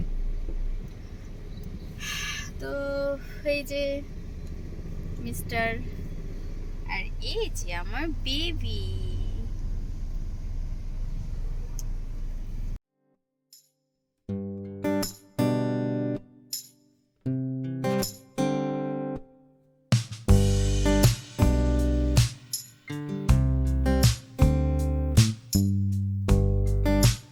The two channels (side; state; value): both; identical; correlation 1.00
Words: তো এই যে মিস্টার, আর এই যে আমার বেবি।